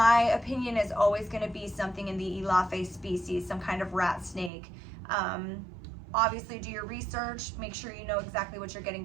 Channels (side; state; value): left; drops out; at 4.5 s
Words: opinion is always going to be something in the Elaphe species, some kind of rat snake. Obviously do your research, make sure you know exactly what you're getting